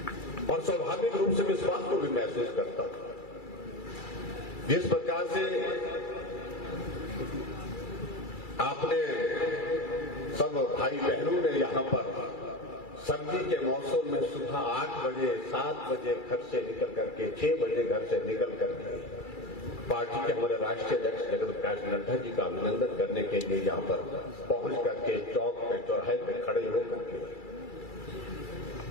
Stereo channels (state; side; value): late; right; 2.3 ms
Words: और स्वाभाविक रूप से इस बात को भी महसूस करता हूं, जिस प्रकार से आपने सब भाई बहनों ने यहां पर सर्दी के मौसम में सुबह 8 बजे 7 बजे घर से निकल करके 6 बजे घर से निकल करके पार्टी के हमारे राष्ट्रीय अध्यक्ष जगत प्रकाश नड्डा जी का अभिनंदन करने के लिए यहां पर पहुंच करके चौक पे, चौराहे पे खड़े होकर के